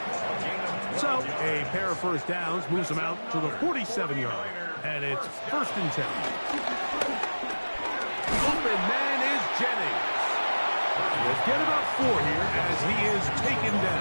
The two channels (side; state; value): both; inverted; correlation -1.00